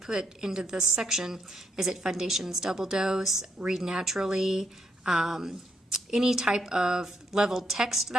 put into this section? Is it Foundations Double Dose, Read Naturally, any type of leveled text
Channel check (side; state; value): both; normal; correlation 0.77